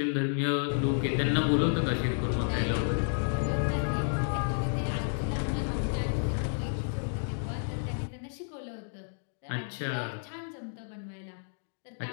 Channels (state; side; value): silent; right; digital silence